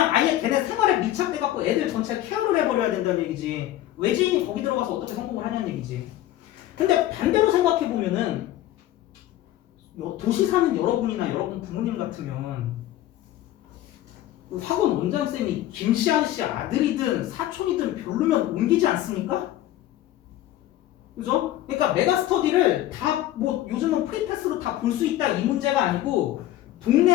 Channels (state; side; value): quieter; right; 14.0 dB